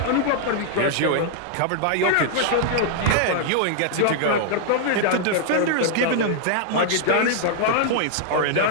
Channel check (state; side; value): different; both; correlation -0.01